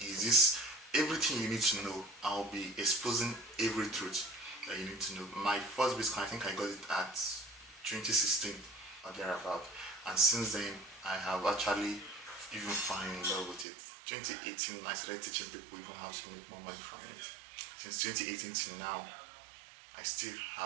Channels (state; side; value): drops out; left; at 13.7 s